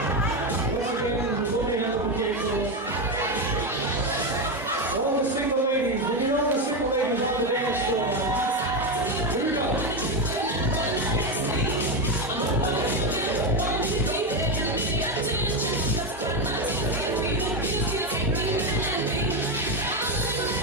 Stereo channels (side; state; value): both; normal; correlation 0.11